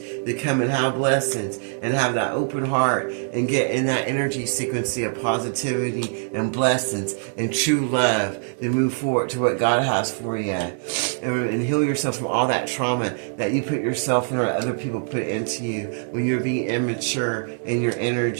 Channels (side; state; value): left; silent; digital silence